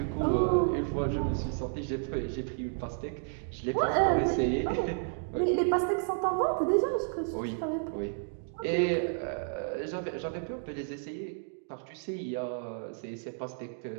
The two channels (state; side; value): silent; left; digital silence